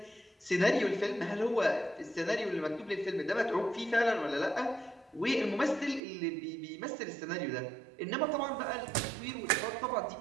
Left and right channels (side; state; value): left; drops out; at 6.0 s